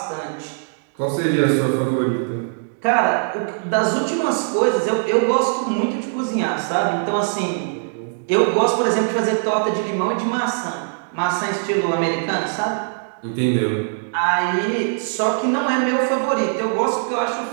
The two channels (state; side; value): silent; left; digital silence